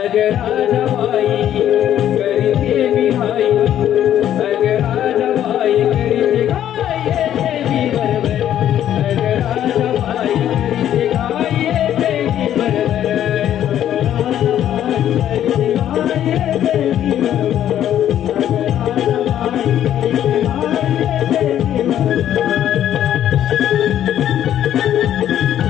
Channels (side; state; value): right; quieter; 11.0 dB